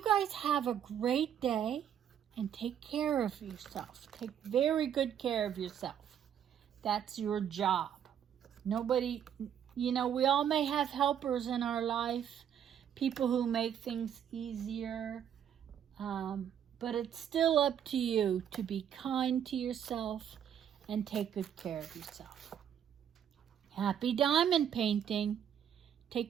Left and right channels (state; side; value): quieter; left; 9.2 dB